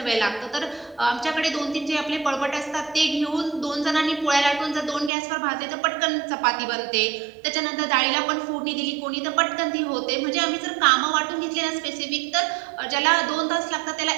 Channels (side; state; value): left; drops out; at 5.1 s